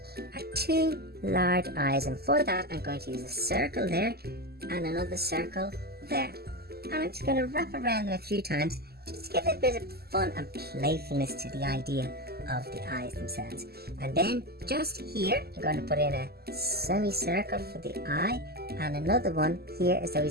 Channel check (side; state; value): left; late; 0.46 ms